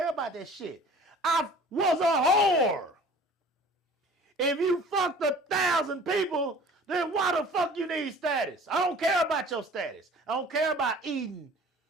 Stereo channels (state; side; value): normal; both; correlation 0.47